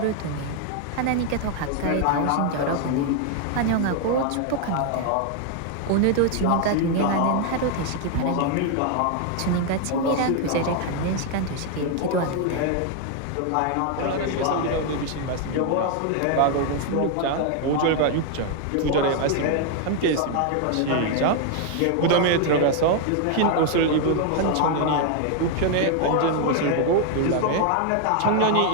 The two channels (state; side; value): different; both; correlation 0.00